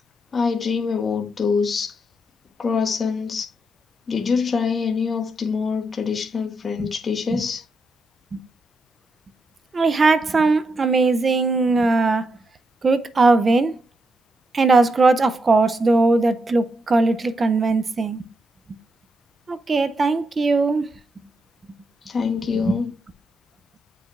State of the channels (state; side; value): normal; both; correlation 0.82